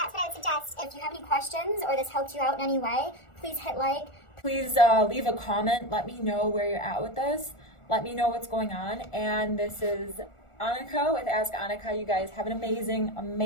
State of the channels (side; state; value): right; late; 1.4 ms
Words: what I would suggest. If you have any questions or this helped you out in any way, please hit like. Please leave a comment. Let me know where you're at with this. Let me know what's going on. And this is Annika with Ask Annika. You guys have an amazing,